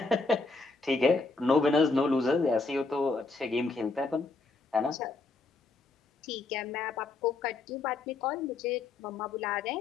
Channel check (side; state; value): right; quieter; 3.8 dB